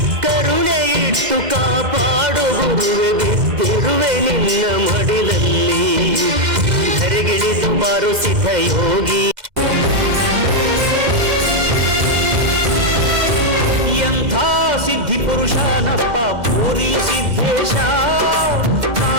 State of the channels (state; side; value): late; left; 2.1 ms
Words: ಕರುಣೆ ಇಟ್ಟು ಕಾಪಾಡು ಗುರುವೆ ಬಿದ್ದಿರುವೆ ನಿನ್ನ ಮಡಿಲಲ್ಲಿ ಧರೆಗಿಳಿದು ಬಾರು ಸಿದ್ಧ ಯೋಗಿ ಎಂಥ ಸಿದ್ಧಿ ಪುರುಷನಪ್ಪ ಪೂರಿ ಸಿದ್ದೇಶ